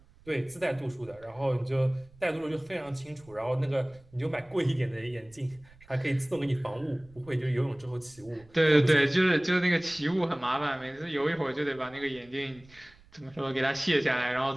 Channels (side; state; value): right; noise; rumble, 26 dB below the sound